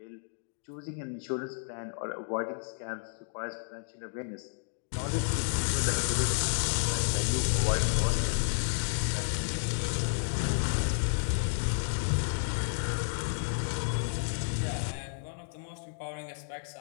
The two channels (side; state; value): right; silent; digital silence